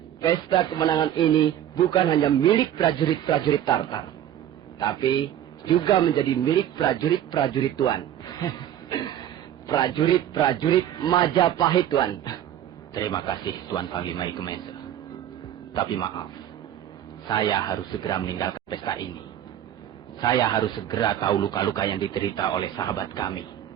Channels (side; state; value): left; quieter; 11.0 dB